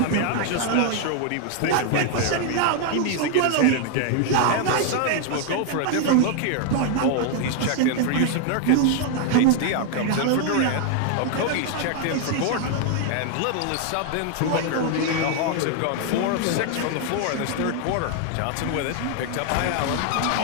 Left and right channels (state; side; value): different; both; correlation 0.00